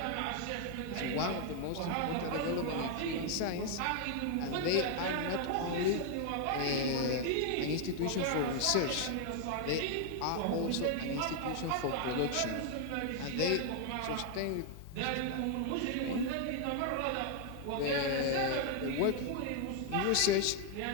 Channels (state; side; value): different; both; correlation 0.00